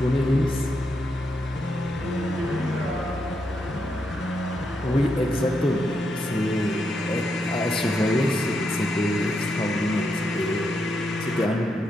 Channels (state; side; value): normal; both; correlation 0.82